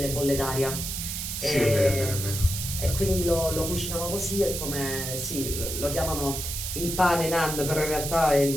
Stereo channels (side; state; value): right; noise; hiss, 4 dB below the sound